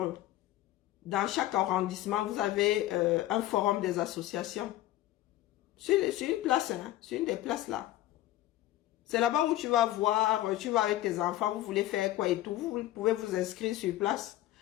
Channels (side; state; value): right; quieter; 14.7 dB